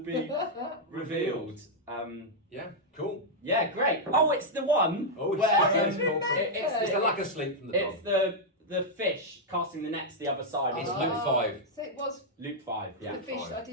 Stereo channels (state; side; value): normal; both; correlation -0.04